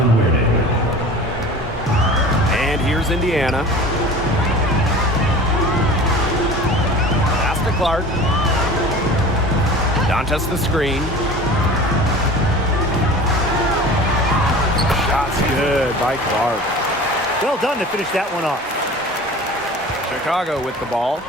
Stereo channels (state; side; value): normal; both; correlation 0.39